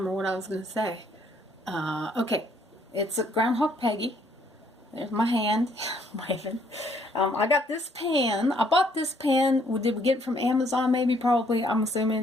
what I was going to say. Okay, it's a Groundhog Peggy. There's my hand waving. I got this pan. I bought this pan. Did we get it from Amazon? Maybe, probably. I'm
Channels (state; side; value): normal; both; correlation 0.66